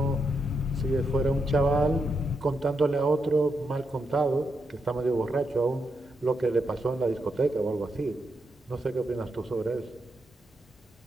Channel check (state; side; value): normal; both; correlation 0.83